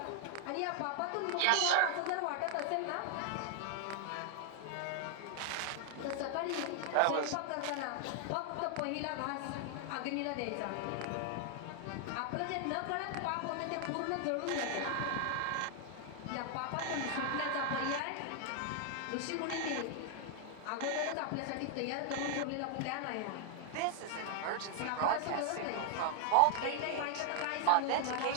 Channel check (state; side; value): different; both; correlation 0.00